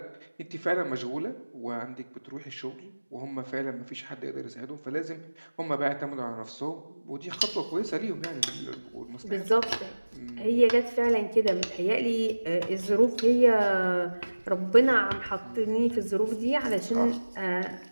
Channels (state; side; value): inverted; both; correlation -1.00